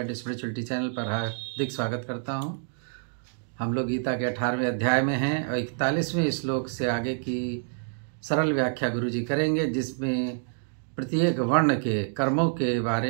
spirituality channel पर हार्दिक स्वागत करता हूं। हम लोग गीता के 18वें अध्याय में हैं और 41वें श्लोक से आगे की सरल व्याख्या गुरु जी करेंगे, जिसमें प्रत्येक वर्ण के कर्मों के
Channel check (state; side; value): silent; left; digital silence